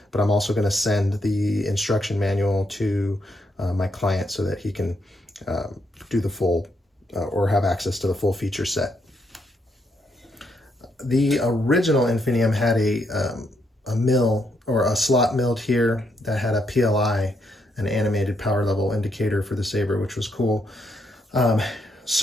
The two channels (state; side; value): normal; both; correlation 0.76